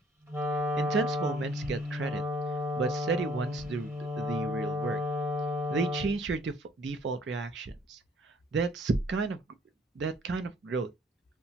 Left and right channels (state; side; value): normal; both; correlation 0.60